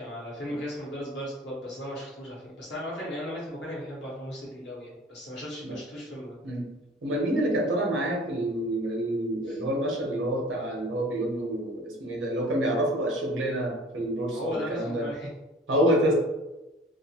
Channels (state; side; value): normal; both; correlation 0.46